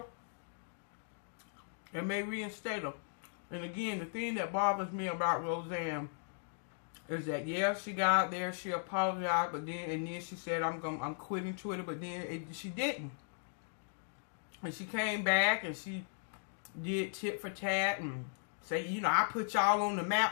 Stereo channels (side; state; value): right; silent; digital silence